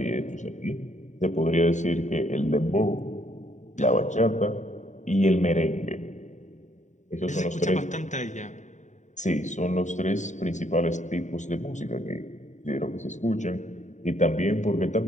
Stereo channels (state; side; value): late; right; 0.35 ms